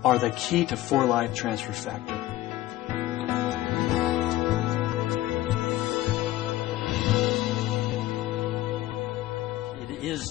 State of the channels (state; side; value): quieter; right; 15.6 dB